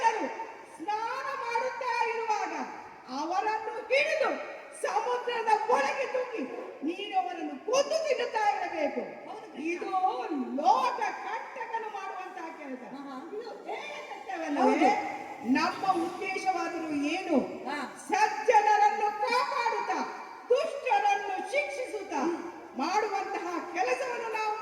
ಸ್ನಾನ ಮಾಡುತ್ತಾ ಇರುವಾಗ ಅವರನ್ನು ಹಿಡಿದು ಸಮುದ್ರದ ಒಳಗೆ ತೂಗಿ ನೀನು ಅವರನ್ನು ಕೊಂದು ತಿನ್ನುತ್ತಾ ಇರಬೇಕು. ಇದು ಲೋಕ ಕಂಟಕನು ಮಾಡುವಂತಹ ಕೆಲಸ. ಇದು ಹೇಯಕೃತ್ಯವಲ್ಲವೇ? ನಮ್ಮ ಉದ್ದೇಶವಾದರೂ ಏನು? ಸಜ್ಜನರನ್ನು ಕಾಪಾಡುತ್ತಾ ದುಷ್ಟರನ್ನು ಶಿಕ್ಷಿಸುತ್ತಾ ಮಾಡುವಂತಹ ಕೆಲಸವನ್ನು ನಾವು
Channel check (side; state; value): both; identical; correlation 1.00